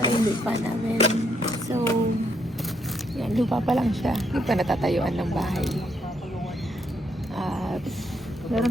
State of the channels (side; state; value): both; normal; correlation 0.75